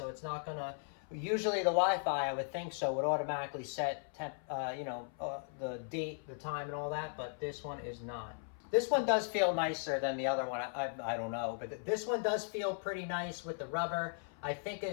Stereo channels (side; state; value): right; silent; 53 dB below the other